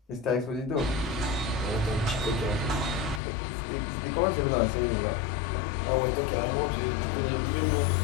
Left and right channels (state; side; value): drops out; right; at 3.2 s